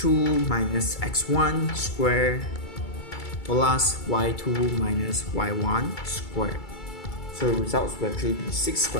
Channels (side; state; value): right; late; 2.3 ms